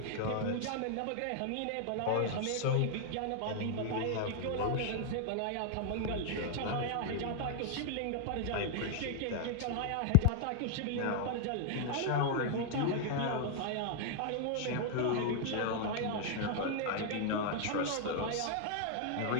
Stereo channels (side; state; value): both; different; correlation 0.00